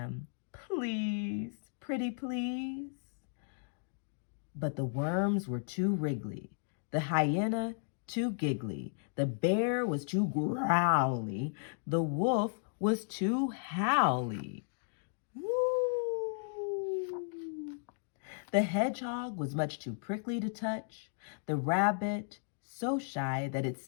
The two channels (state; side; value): silent; right; digital silence